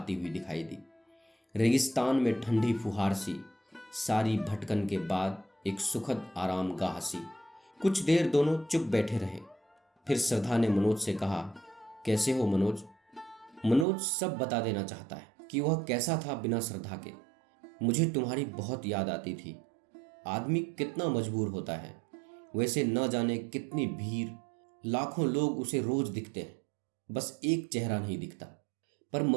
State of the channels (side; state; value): left; drops out; at 13.9 s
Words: हुई दिखाई दी। रेगिस्तान में ठंडी फुहार सी, सारी भटकन के बाद एक सुखद आराम गाह सी। कुछ देर दोनों चुप बैठे रहे। फिर श्रद्धा ने मनोज से कहा, कैसे हो मनोज? मनोज सब बता देना चाहता है कि वह कैसा था बिना श्रद्धा के। मुझे तुम्हारी बहुत याद आती थी। आदमी कितना मजबूर होता है, वैसे न जाने कितनी भीड़, लाखों लोग उसे रोज दिखते हैं, बस एक चेहरा नहीं दिखता। पर